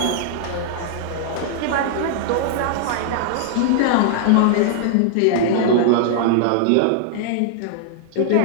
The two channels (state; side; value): different; both; correlation -0.01